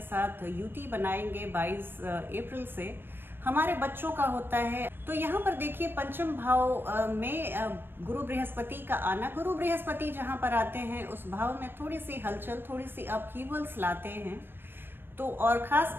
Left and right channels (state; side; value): late; left; 0.099 ms